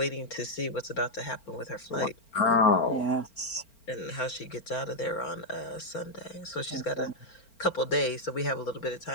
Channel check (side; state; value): right; late; 4.4 ms